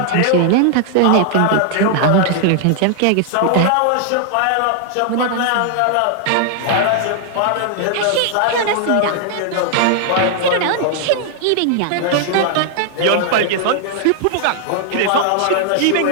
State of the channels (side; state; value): both; different; correlation 0.00